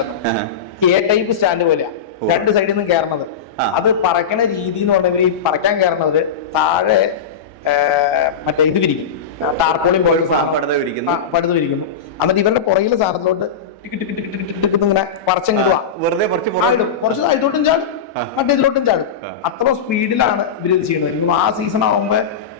എ ടൈപ്പ് സ്റ്റാൻഡ് പോലെയാ, 2 സൈഡിൽ നിന്നും കയറണത്. അത് പറക്കണ രീതി എന്ന് പറഞ്ഞാൽ ഈ പറക്കാൻ കയറുന്നത് താഴെ മറ്റേ ഇത് വിരിക്കും, ടാർപോളിയും പോലെ പടുത വിരിക്കുന്നു. എന്നിട്ട് ഇവരുടെ പുറകിലെ സാധനത്തിലോട്ട് ഇങ്ങനെ പറിച്ചങ്ങ് വെറുതെ കുറച്ച് അതിലോട്ടും ചാടും, മറ്റേ ഇതിലോട്ടും ചാടും. അത്ര സ്പീഡിലാണ് ഇവർ ഇത് ചെയ്യുന്നത്. ആ സീസൺ ആകുമ്പോ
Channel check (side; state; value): right; quieter; 6.5 dB